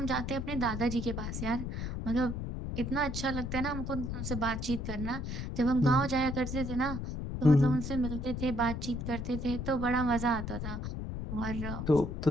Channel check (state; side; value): noise; left; rumble, 4 dB below the sound